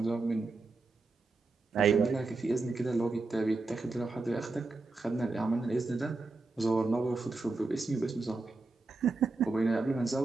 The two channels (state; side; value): quieter; left; 3.5 dB